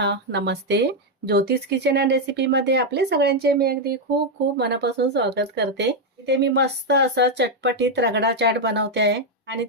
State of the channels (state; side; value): normal; both; correlation 0.02